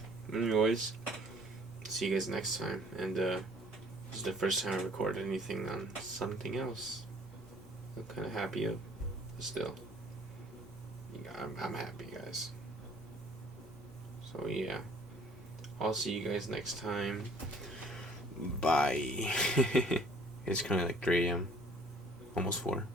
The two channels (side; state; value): both; normal; correlation 0.55